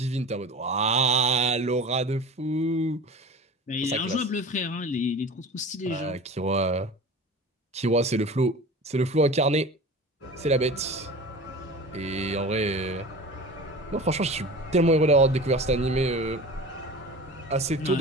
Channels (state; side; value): normal; both; correlation 0.36